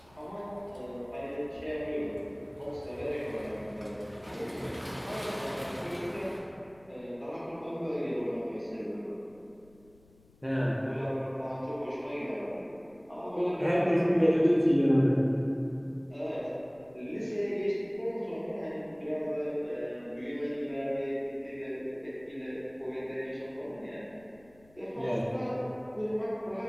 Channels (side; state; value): left; noise; rumble, 28 dB below the sound